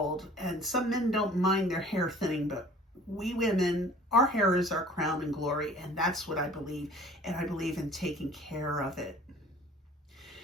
and some men don't mind their hair thinning, but we women, our hair is our crown and glory, and that's what I believe, and I believe in taking care of it.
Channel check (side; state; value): both; normal; correlation 0.49